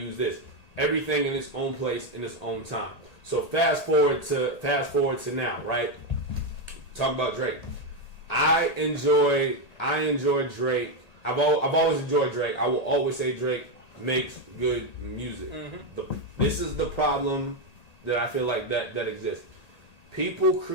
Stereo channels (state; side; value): late; right; 1.8 ms